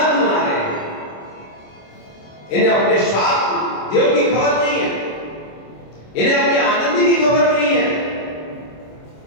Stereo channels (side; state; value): right; late; 26 ms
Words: मना रहे हैं। इन्हें अपने स्वार्थ देव की खबर नहीं है, इन्हें अपने आनंद की खबर नहीं है।